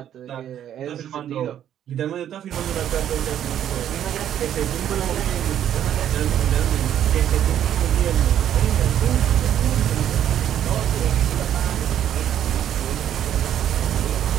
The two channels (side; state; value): left; quieter; 10.4 dB